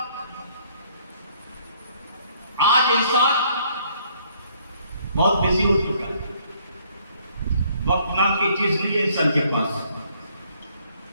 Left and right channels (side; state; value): both; inverted; correlation -0.64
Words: आज इंसान बहुत बिजी हो चुका है। वक्त नाम की चीज नहीं है इंसान के पास,